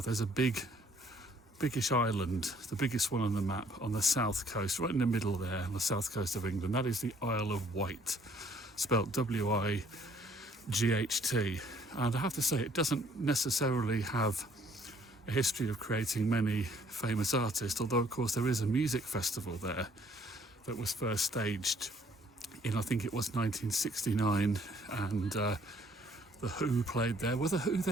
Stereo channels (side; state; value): both; normal; correlation 0.62